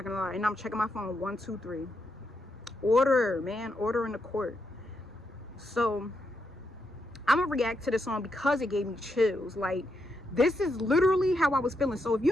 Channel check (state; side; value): normal; both; correlation 0.81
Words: gonna lie. And I'm checking my phone. 1, 2, 3. Order, man, order in the court. So I'm gonna react to this song because it gave me chills. Like, this is literally how I was feeling. So if you